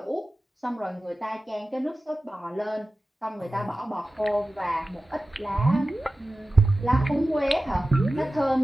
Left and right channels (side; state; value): both; normal; correlation 0.95